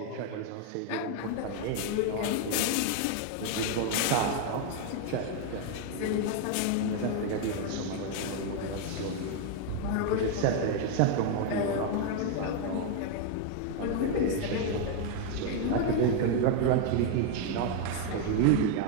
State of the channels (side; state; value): both; different; correlation 0.01